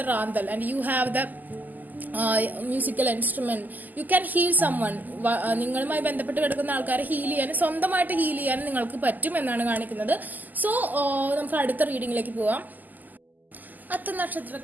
റാന്തൽ and you have the musical instrument. You can heal summon. നിങ്ങളുമായി ബന്ധപ്പെട്ട് കിടക്കുന്ന ആൾക്കാരെ ഹീൽ ചെയ്യാനും സ്വന്തമായിട്ട് ഹീൽ ചെയ്യാനും നിങ്ങൾക്ക് പറ്റും എന്നാണ് കാണിക്കുന്നത്. സോ നമുക്ക് അടുത്ത റീഡിങ്ങിലേക്ക് പോവാം. അത്ത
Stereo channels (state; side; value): late; left; 0.084 ms